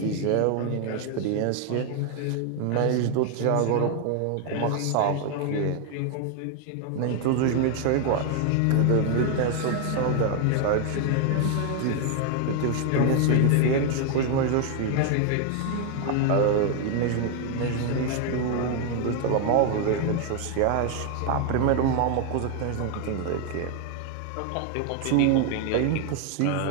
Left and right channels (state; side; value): different; both; correlation 0.00